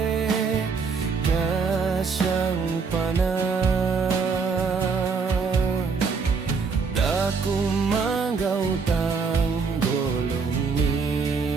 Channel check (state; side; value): quieter; left; 5.1 dB